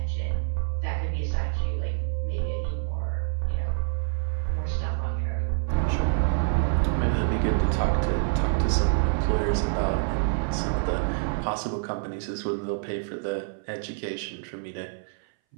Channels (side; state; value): left; silent; 59 dB below the other